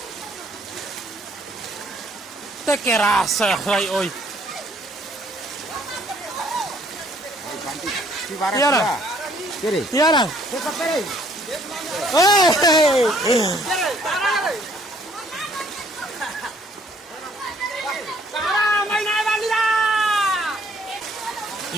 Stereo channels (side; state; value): both; normal; correlation 0.62